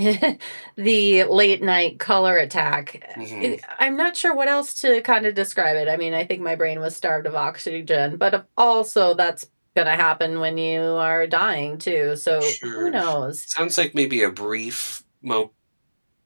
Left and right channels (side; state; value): both; inverted; correlation -1.00